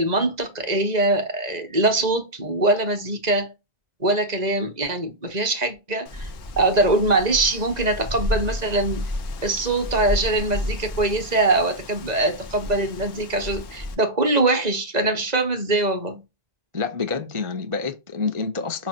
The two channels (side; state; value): left; late; 1.9 ms